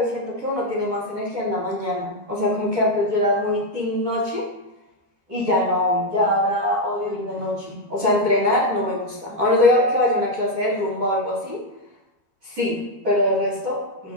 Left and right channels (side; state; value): left; late; 13 ms